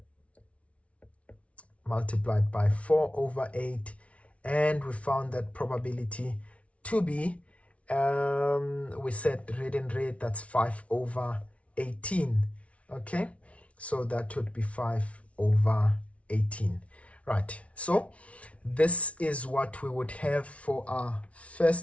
multiplied by 4 over 8, and we found that probability to be, we said red and red, that's 5 over 18. Okay, so that would be 5 over 18. Right, so this is what we would have for our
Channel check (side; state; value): right; late; 0.063 ms